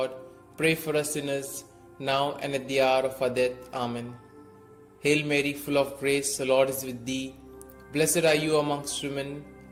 pray for us sinners, now and at the hour of our death. Amen. Hail Mary, full of grace, the Lord is with thee. Blessed are you amongst women,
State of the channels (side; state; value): both; identical; correlation 1.00